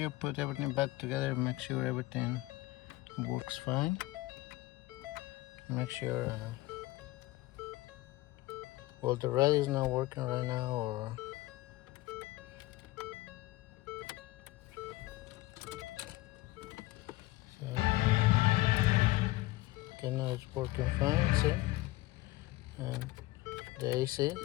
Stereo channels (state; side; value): quieter; right; 18.8 dB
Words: put everything back together, make sure everything works fine. Make sure well, the red is not working right now, or so, okay, now it's working fine. See, and the AC